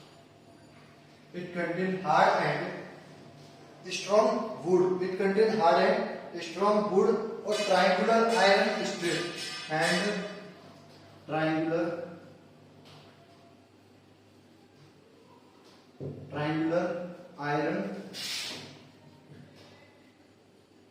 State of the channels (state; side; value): identical; both; correlation 1.00